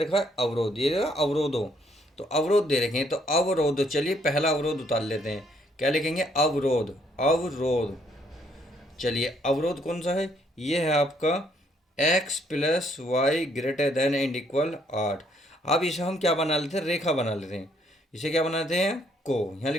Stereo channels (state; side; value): normal; both; correlation 0.68